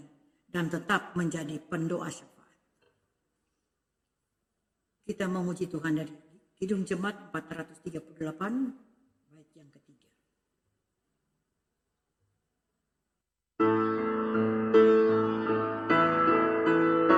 dan tetap menjadi pendoa syafaat. Kita memuji Tuhan dari Kidung Jemaat 438, bait yang ketiga.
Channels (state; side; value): identical; both; correlation 1.00